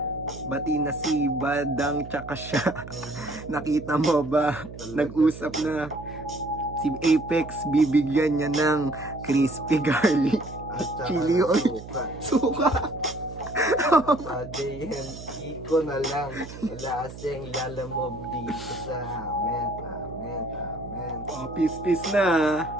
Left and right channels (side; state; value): right; noise; hum, 14 dB below the sound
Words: Bati na si Badang tsaka siya. Nakita mo ba? Nag-usap na si Apex, bibigyan niya ng crispy garlic At saka chili oil. suka. Suka. Pa JNT ko na lang, wala kasing lalamog dito sa amin. Peace na.